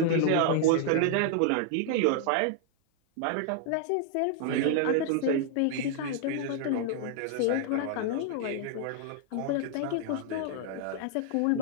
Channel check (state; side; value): different; both; correlation 0.00